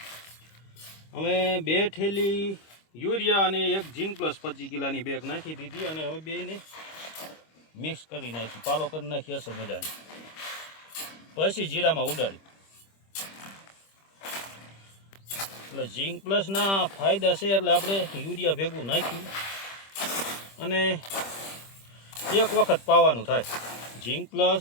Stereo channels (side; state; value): right; late; 25 ms